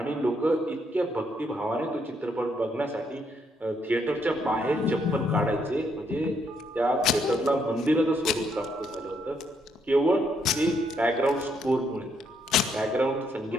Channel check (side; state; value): both; normal; correlation 0.74